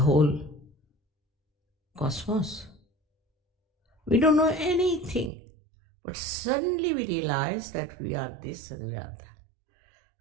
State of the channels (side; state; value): left; drops out; at 5.3 s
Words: whole cosmos? We don't know anything, but suddenly we realize that we are this and we are that.